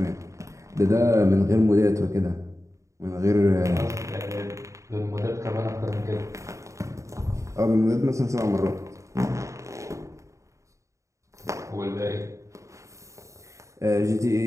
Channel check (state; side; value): late; left; 0.15 ms